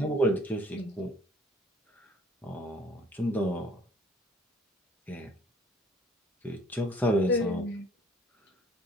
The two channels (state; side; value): normal; both; correlation 0.56